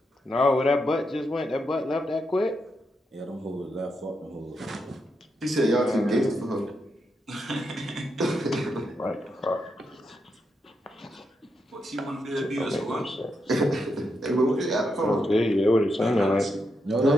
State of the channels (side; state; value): both; normal; correlation 0.83